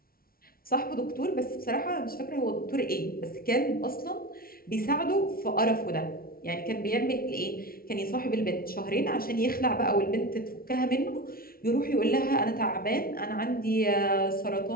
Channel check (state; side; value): late; right; 0.43 ms